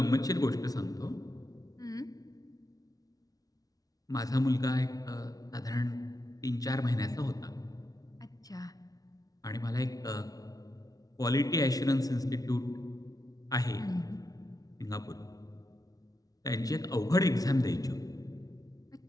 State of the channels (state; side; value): late; right; 0.18 ms